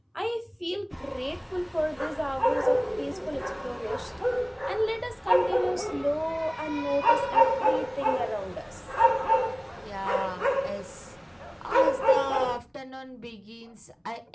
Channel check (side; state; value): both; identical; correlation 1.00